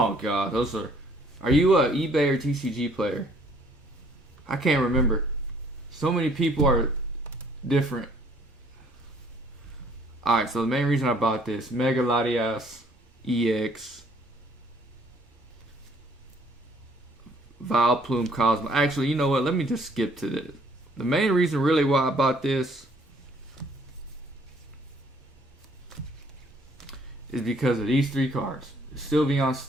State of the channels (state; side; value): normal; both; correlation 0.61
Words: God. Those are... Are you a eBay or TCG player? I can't remember. So many people are different. Alright, so the main reason I bought this, Mega Latias EX, Vileplume Cosmo. Actually, you know what? Let me just skip to this. The main reason really why I bought this is because of these 3 cards. The Sylveon